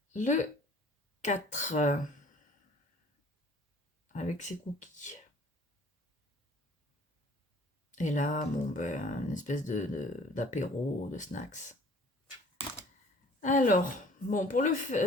Le 4, avec ses cookies. Et là, bon, ben, une espèce d'apéro, de snacks. Alors, bon, pour le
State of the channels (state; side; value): normal; both; correlation 0.52